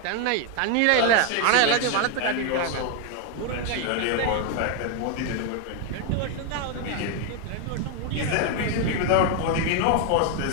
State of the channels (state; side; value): different; both; correlation 0.01